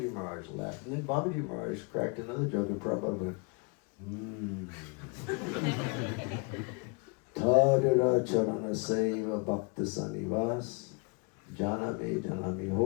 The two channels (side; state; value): right; quieter; 32.9 dB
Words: Maharaj laughed. And then Babaji Maharaj cracked another joke, and Prabhupada went, Tadura Charana Seva Bhakta Sanivas, Janame Janami